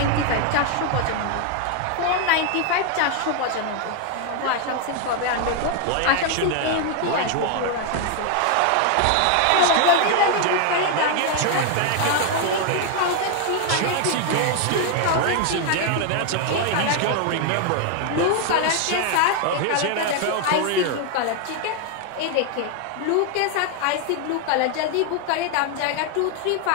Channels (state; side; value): different; both; correlation 0.01